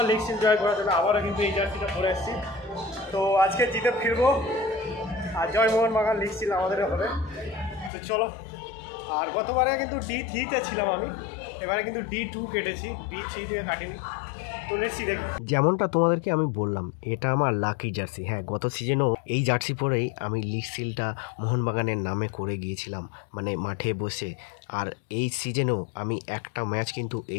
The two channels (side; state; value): right; drops out; at 7.9 s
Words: লিগ সিল জয় করার জন্য আবারও কিন্তু এই জার্সিটা পরে এসেছি। তো আজকে জিতে ফিরবো, আর জয় মোহনবাগান, লিগ সিল আমাদেরও হবে। তো চলো, আর গতবারে কিন্তু D3-তে ছিলাম আমি, এবারে কিন্তু D2 কেটেছি, D3 দিয়ে কাটিনি। যেমনটা তোমাদেরকে আমি বললাম, এটা আমার লাকি জার্সি। হ্যাঁ, গত সিজনেও এই জার্সি পরেই আমি লিগ সিলটা মোহনবাগানের নামে করে গিয়েছিলাম, মানে মাঠে বসে। আর এই সিজনেও আমি একটা ম্যাচ কিন্তু